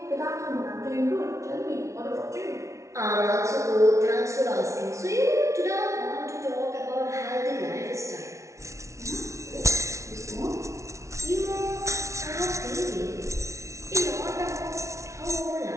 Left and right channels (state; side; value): late; left; 0.14 ms